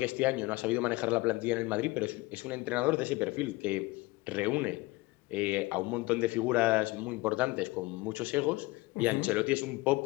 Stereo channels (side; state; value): right; quieter; 21.9 dB